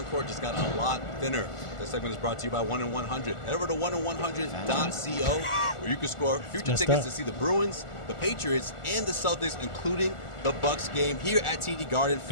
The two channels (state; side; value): late; right; 1.4 ms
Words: court just got a lot thinner. This segment is brought to you by 1-in-100. Head over to 1-in-100.co where you can score future tickets to see the Bruins, the Patriots, and the Celtics, including the Bucks game here at TD Garden